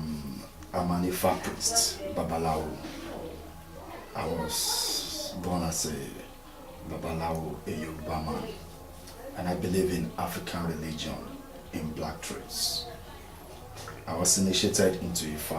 an Ifa priest, Babalawo. I was born as a Babalawo, a Yoruba man, and I believe in African religion in black traits. I was initiated into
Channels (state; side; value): identical; both; correlation 1.00